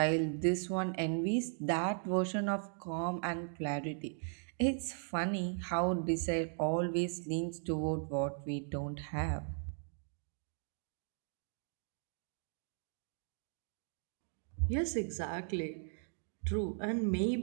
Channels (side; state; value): left; silent; 53 dB below the other